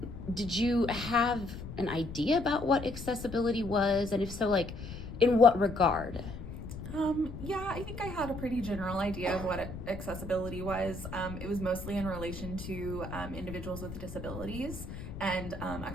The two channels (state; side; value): noise; left; rumble, 10 dB below the sound